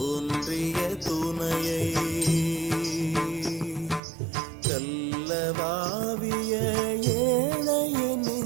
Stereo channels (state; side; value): drops out; left; at 4.0 s